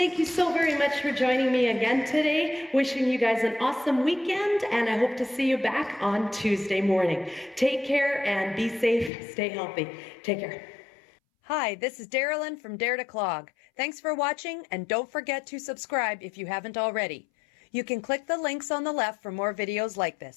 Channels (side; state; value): right; drops out; at 9.1 s